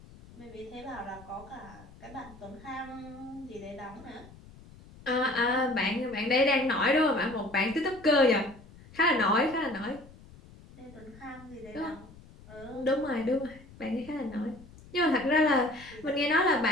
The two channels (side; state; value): left; noise; rumble, 21 dB below the sound